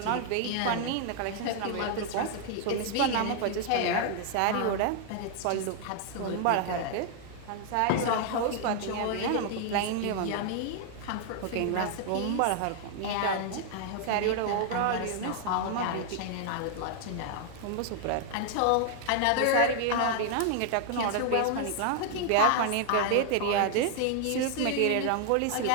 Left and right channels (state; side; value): different; both; correlation 0.00